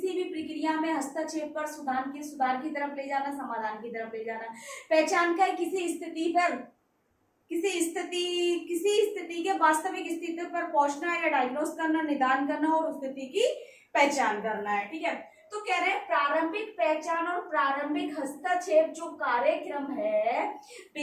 भी प्रक्रिया में हस्तक्षेप कर सुधार की तरफ ले जाना, समाधान की तरफ ले जाना। पहचान का है किसी स्थिति के वास्तविक स्थिति पर पहुंचना या डायग्नोस करना, निदान करना और उस स्थिति की पहचान करना है, ठीक है। तो कह रहे हैं प्रारंभिक पहचान और प्रारंभिक हस्तक्षेप जो कार्यक्रम है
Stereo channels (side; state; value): both; identical; correlation 1.00